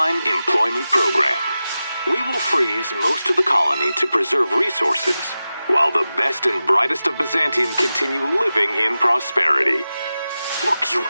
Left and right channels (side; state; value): both; inverted; correlation -0.94